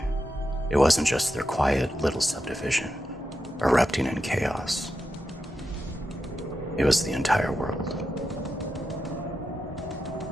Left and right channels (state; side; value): normal; both; correlation 0.88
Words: it wasn't just their quiet little subdivision erupting in chaos. It was the entire world.